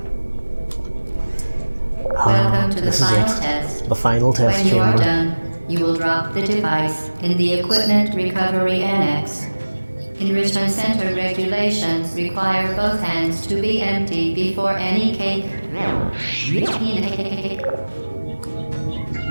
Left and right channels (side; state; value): both; inverted; correlation -1.00